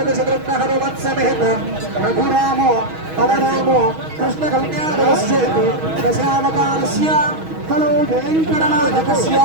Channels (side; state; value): left; late; 6.3 ms